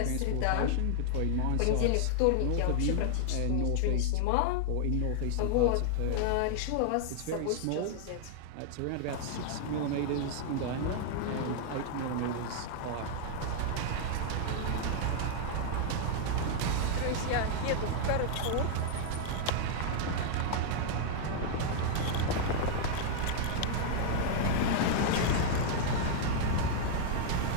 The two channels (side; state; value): both; different; correlation -0.01